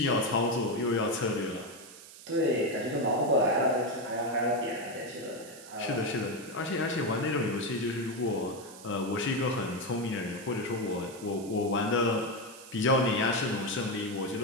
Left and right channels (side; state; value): right; noise; hiss, 17 dB below the sound